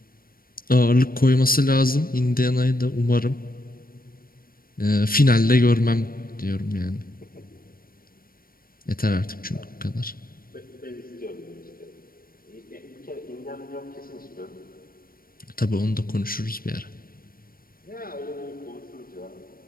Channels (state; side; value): late; right; 0.42 ms